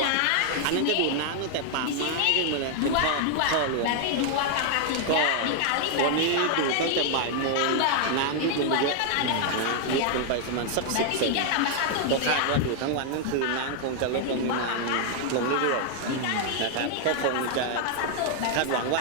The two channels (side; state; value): both; different; correlation 0.00